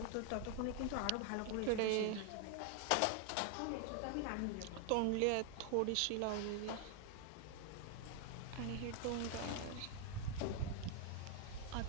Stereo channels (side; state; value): both; different; correlation 0.00